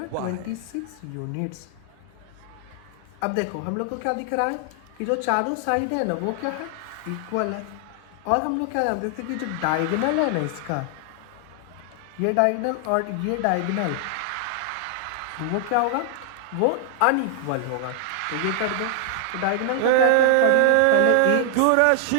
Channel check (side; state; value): both; different; correlation 0.00